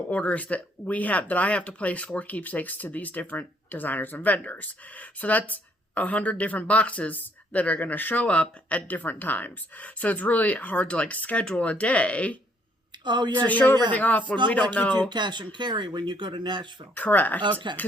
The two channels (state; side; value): normal; both; correlation 0.67